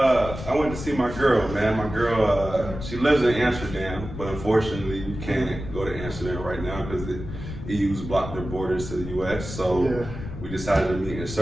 went to see my girl, man. My girl, she lives in Amsterdam, but unfortunately, you can't go to Amsterdam right now because the EU's blocked their borders to the U.S. So we decided to meet in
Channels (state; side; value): noise; left; rumble, 9 dB below the sound